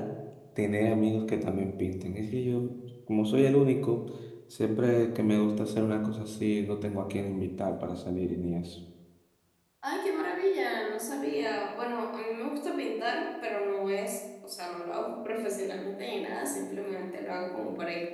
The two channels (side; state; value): both; identical; correlation 1.00